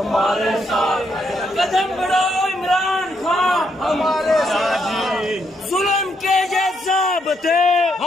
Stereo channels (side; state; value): both; normal; correlation 0.76